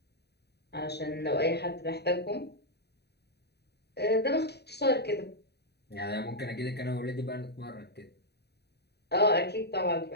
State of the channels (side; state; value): right; late; 0.48 ms